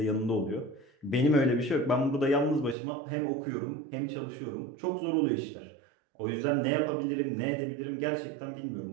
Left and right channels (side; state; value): left; drops out; at 2.8 s